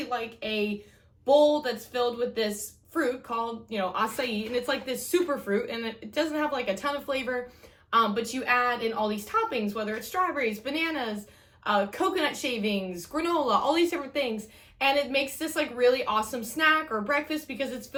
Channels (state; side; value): identical; both; correlation 1.00